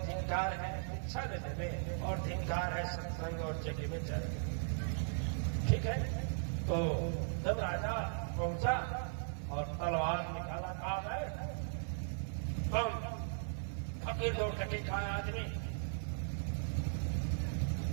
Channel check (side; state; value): left; silent; 53 dB below the other